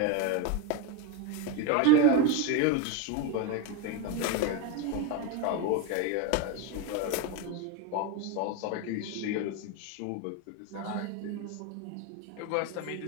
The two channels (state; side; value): different; both; correlation 0.03